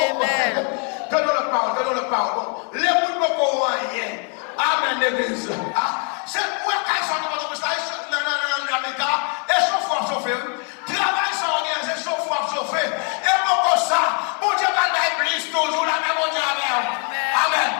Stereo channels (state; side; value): quieter; right; 39.1 dB